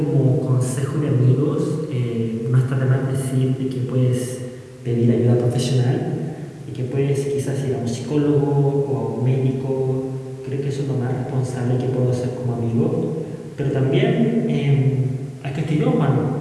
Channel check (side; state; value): both; identical; correlation 1.00